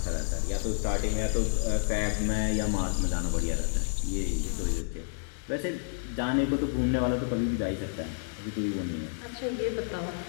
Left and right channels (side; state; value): right; silent; digital silence